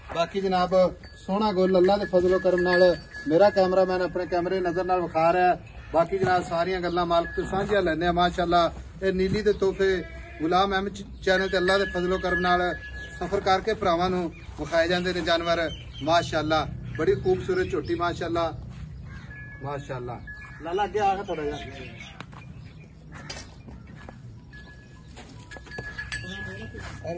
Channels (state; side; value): identical; both; correlation 1.00